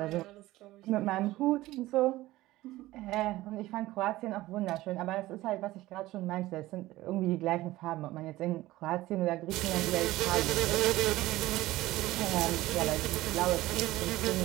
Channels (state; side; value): quieter; left; 17.2 dB